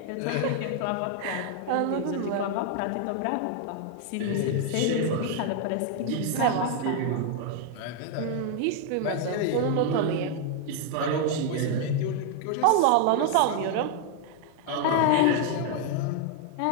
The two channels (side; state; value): both; different; correlation 0.00